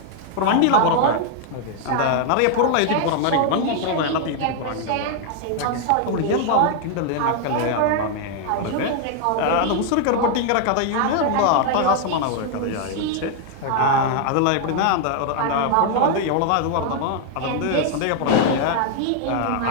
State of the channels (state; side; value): different; both; correlation 0.00